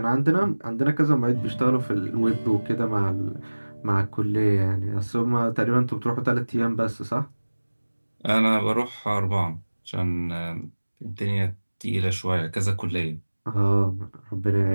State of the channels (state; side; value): inverted; both; correlation -1.00